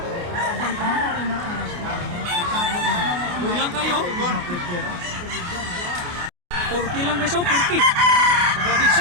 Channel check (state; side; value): late; left; 28 ms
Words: Bulang kayo. Turkey lang guys oh, Turkey. Saka big